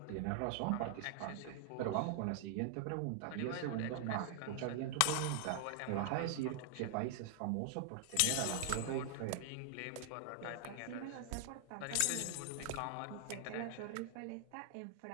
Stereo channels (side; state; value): both; different; correlation 0.00